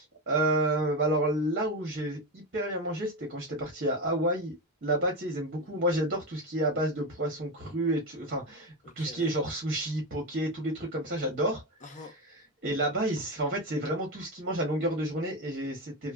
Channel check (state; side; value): normal; both; correlation 0.16